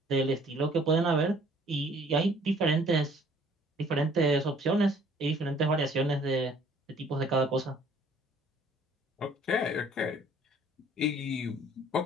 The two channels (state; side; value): normal; both; correlation 0.57